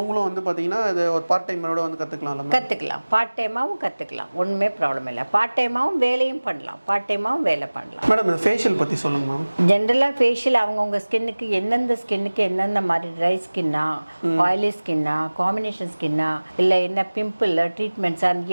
வந்து பார்த்தீங்கன்னா இது ஒரு பார்ட் டைமோட வந்து கற்றுக்கலாம். பார்ட் டைமாகவும் கற்றுக்கலாம், ஒன்றுமே ப்ராப்ளம் இல்லை. பார்ட் டைமாகவும் வேலையும் பண்ணலாம், பார்ட் டைமாகவும் வேலை பண்ணலாம். மேடம் இந்த ஃபேஷியல் பற்றி சொல்லுங்க மேம். ஜென்ரலாக ஃபேஷியல் அவங்கவுங்க ஸ்கின்னுக்கு எந்தெந்த மாதிரி ட்ரை ஸ்கின்னா, ஆயிலி ஸ்கின்னா, காம்பினேஷன் ஸ்கின்னா, இல்லை என்ன பிம்பிள் ட்ரீட்மெண்ட்ஸ்,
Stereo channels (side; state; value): both; inverted; correlation -1.00